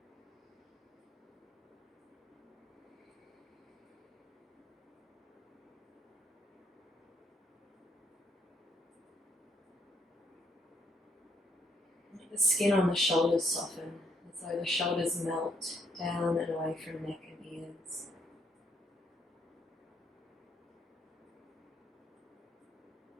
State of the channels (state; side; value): normal; both; correlation 0.70